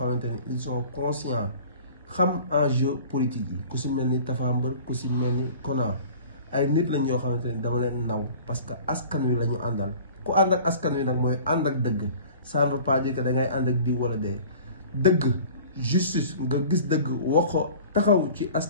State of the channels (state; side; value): inverted; both; correlation -0.44